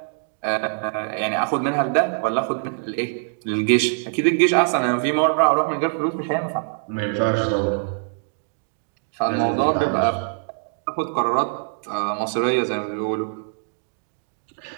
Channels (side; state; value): left; silent; digital silence